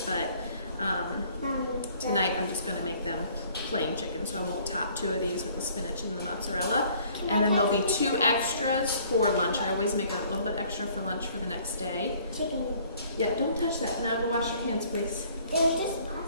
but tonight I'm just going to make them plain chicken, so I won't top 2 of these with the spinach and the mozzarella. And then there'll be 2 extras for lunch. I always make a little bit extra for lunch for the next day. Chicken. Yeah, don't touch that. Now go wash your hands, please. It was just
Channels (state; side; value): inverted; both; correlation -0.57